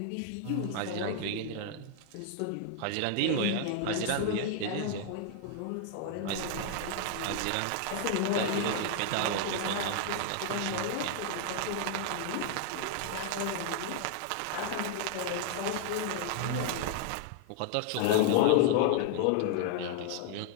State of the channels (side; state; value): both; different; correlation 0.00